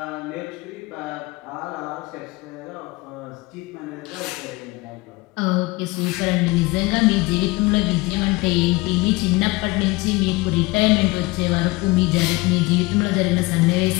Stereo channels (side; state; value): right; quieter; 22.8 dB